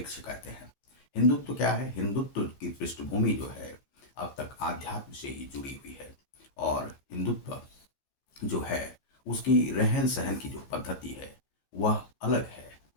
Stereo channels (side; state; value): right; late; 15 ms